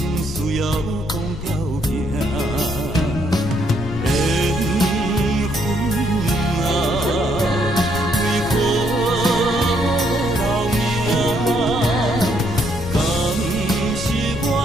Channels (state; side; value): noise; left; rumble, 8 dB below the sound